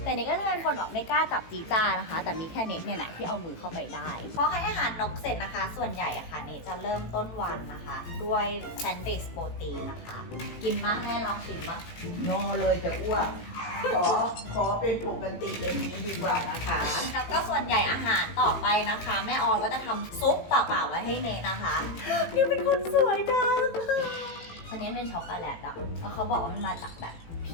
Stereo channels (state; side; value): late; right; 18 ms